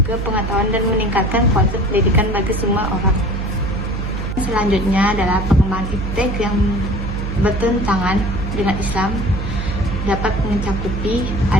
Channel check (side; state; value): right; noise; hum, 3 dB below the sound